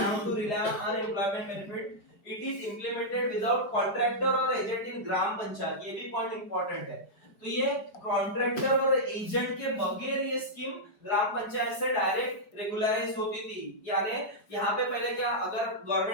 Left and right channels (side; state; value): right; late; 4.9 ms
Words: to rely on unemployment benefit, it is implemented without contractor और एजेंट इन ग्राम पंचायत। ये भी पॉइंट इंपॉर्टेंट है। तो ये कॉन्ट्रैक्टर और एजेंट के बगैर ये स्कीम ग्राम पंचायत से डायरेक्ट रेगुलराइज होती थी। यानी यहाँ पे पहले क्या, अगर